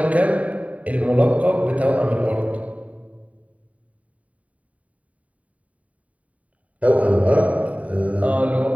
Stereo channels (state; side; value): late; left; 0.068 ms